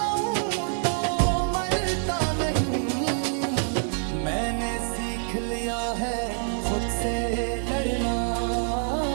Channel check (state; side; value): silent; left; digital silence